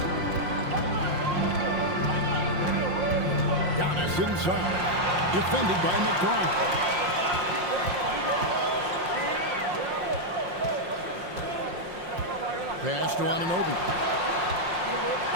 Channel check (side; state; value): left; late; 5.6 ms